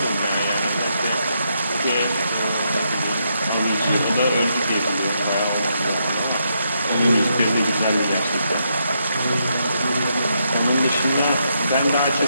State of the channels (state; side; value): inverted; both; correlation -0.79